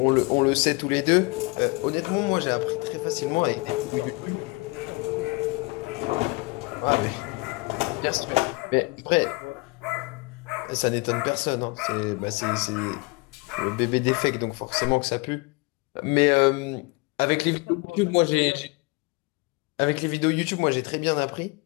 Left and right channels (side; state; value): right; quieter; 26.3 dB